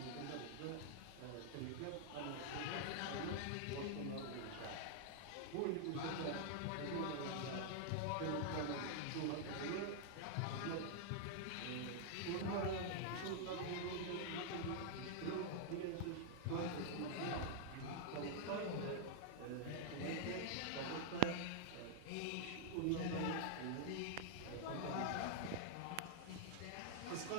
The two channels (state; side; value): different; both; correlation -0.01